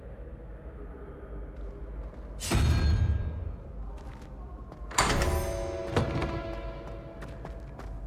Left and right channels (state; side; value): identical; both; correlation 1.00